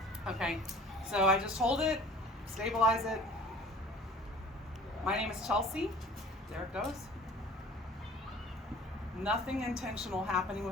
Okay, so I just hold it, stabilize it. My name is Chelsea. There it goes. Nothing intentional happening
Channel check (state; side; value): normal; both; correlation 0.47